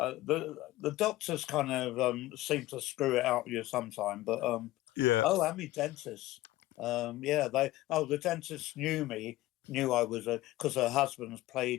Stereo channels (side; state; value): right; quieter; 17.0 dB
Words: doctors kind of seem to screw it out with you sometime, but Yeah. oh, and me dentist. The dentist knew I was because her husband's